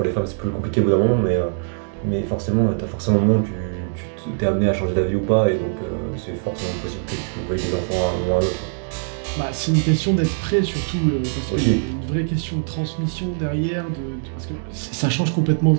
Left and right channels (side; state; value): left; silent; digital silence